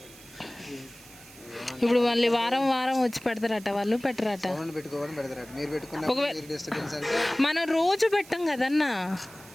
ఇప్పుడు మళ్ళీ వారం వారం వచ్చి పెడతారట, వాళ్ళు పెట్టరట. మనం రోజు పెట్టాం కదన్నా.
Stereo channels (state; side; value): noise; right; hiss, 20 dB below the sound